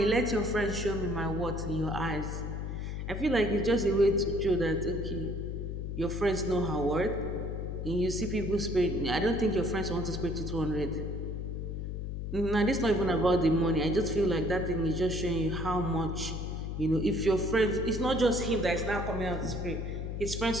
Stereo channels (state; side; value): noise; left; hum, 4 dB below the sound